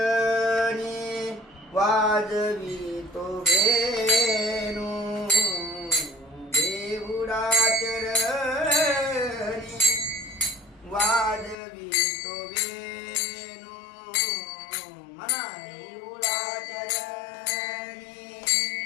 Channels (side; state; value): right; drops out; at 11.6 s